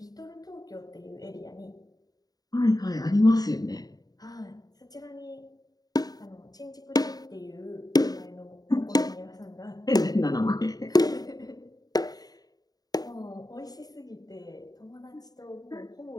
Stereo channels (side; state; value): right; late; 0.18 ms